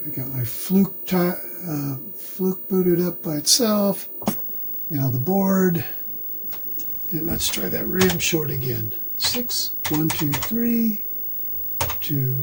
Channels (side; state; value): both; identical; correlation 1.00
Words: I got my fluke booted up by itself. Now the board. And let's try that RAM short again. 6, 1, 2, 3,